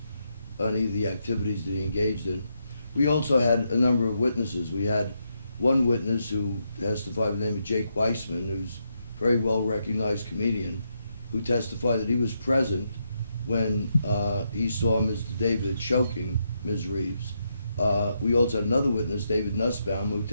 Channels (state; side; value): inverted; both; correlation -0.81